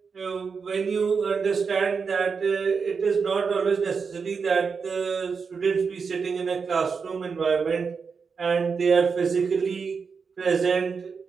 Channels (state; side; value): quieter; left; 5.5 dB